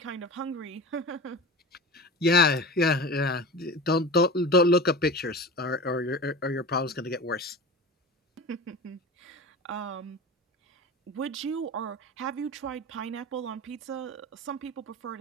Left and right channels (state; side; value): normal; both; correlation 0.31